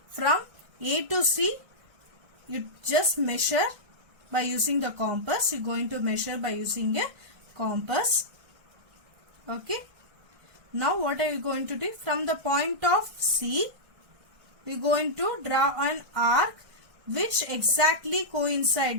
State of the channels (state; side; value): late; left; 1.6 ms